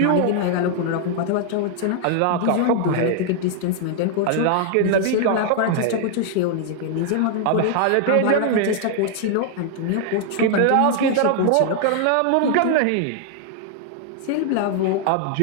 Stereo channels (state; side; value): different; both; correlation 0.00